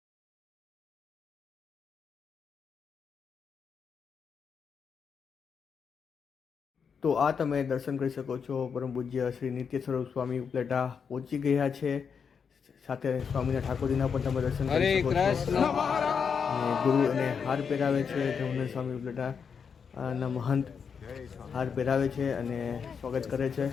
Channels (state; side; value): quieter; right; 6.4 dB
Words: તો આ તમે દર્શન કરી શકો છો પરમ પૂજ્ય શ્રી નિત્ય સ્વરૂપ સ્વામી ઉપલેટા પહોંચી ગયા છે। સાથે સ્વામીના ઠાકોરજીના પણ તમે દર્શન કરી શકો છો। અને ગુરુ એને હાર પહેરાવે છે। ધર્મનંદ સ્વામી ઉપલેટા ના મહંત હાર પહેરાવે છે અને સ્વાગત કરે છે।